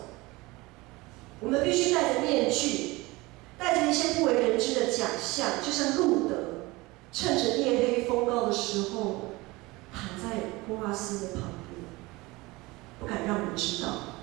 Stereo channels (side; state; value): left; quieter; 22.1 dB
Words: 我们必须戴着面具，带着一些不为人知的假象，就像路德，趁着夜黑风高的时候，躺在波阿斯的旁边，不敢让人知道。